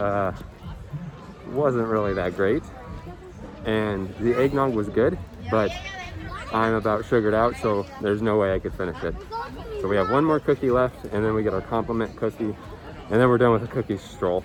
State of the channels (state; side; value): identical; both; correlation 1.00